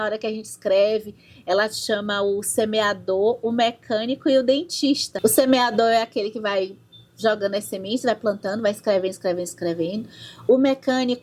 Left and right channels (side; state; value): both; identical; correlation 1.00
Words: hora que a gente escreve. Ela chama o semeador, o mecânico e o dentista. O semeador é aquele que vai jogando as sementes, vai plantando, vai escrevendo. O